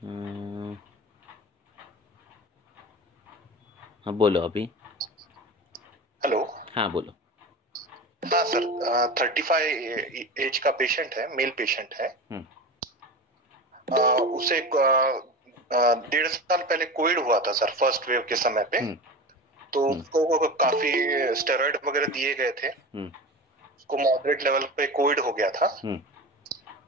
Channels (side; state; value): both; normal; correlation 0.29